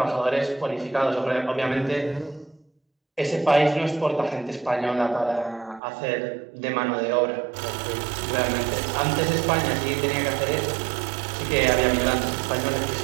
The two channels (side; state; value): left; drops out; at 5.8 s